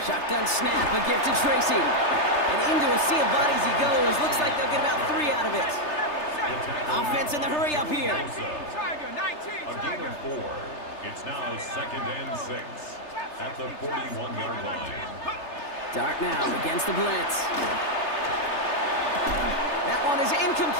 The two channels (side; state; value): right; late; 3.3 ms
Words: Shotgun snap, a gift to Tracy. And into a sea of bodies he goes. Looks like they'll get about 3 out of it. Offense in the hurry up here. 19 Tiger, 19 A gain Tiger. of 4. It's now 2nd and 6 at the 41-yard line. Dart now against the blitz. That one is